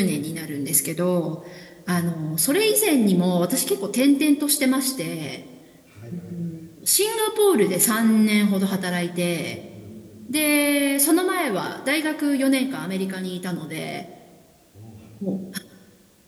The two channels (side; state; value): both; identical; correlation 1.00